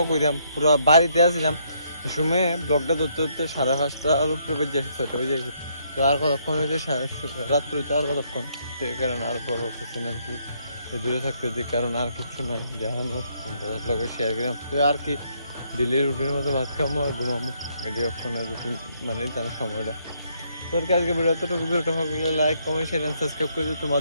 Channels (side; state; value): both; inverted; correlation -0.71